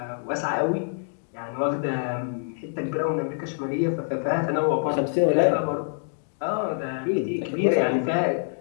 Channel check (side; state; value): right; silent; digital silence